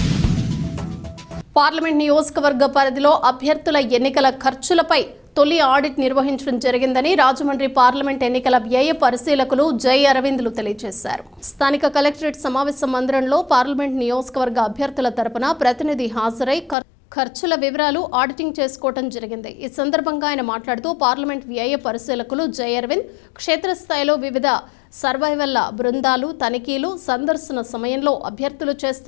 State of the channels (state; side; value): drops out; right; at 16.8 s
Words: పార్లమెంట్ నియోజకవర్గ పరిధిలో అభ్యర్థుల ఎన్నికల ఖర్చులపై తొలి ఆడిట్ నిర్వహించడం జరిగిందని రాజమండ్రి పార్లమెంట్ ఎన్నికల వ్యయ పరిశీలకులు జై అరవింద్లు తెలియజేశారు. స్థానిక కలెక్టరేట్ సమావేశ మందిరంలో పార్లమెంట్ నియోజకవర్గ అభ్యర్థుల తరపున ప్రతినిధి హాజరై ఖర్చుల వివరాలు ఆడిటింగ్ చేసుకోవడం జరిగింది. ఈ సందర్భంగా ఆయన మాట్లాడుతూ పార్లమెంట్ వ్యయ పరిశీలకులు జై అరవింద్ క్షేత్రస్థాయిలో వివిధ సర్వైవల్ల బృందాలు తనిఖీలు సందర్శన సమయంలో అభ్యర్థులు